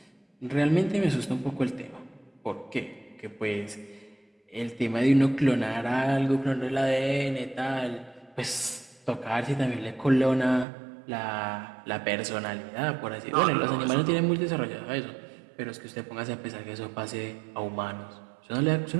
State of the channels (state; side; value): drops out; left; at 10.7 s